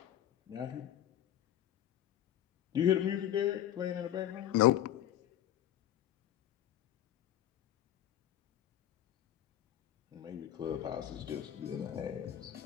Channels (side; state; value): right; quieter; 11.7 dB